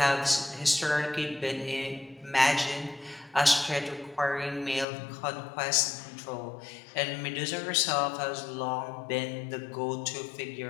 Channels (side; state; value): right; drops out; at 4.9 s